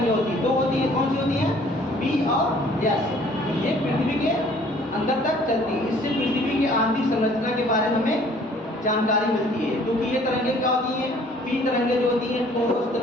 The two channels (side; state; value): both; normal; correlation 0.56